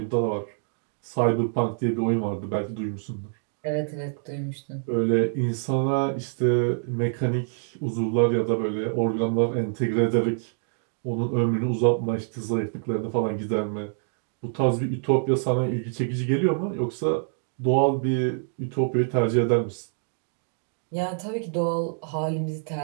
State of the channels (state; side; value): silent; left; digital silence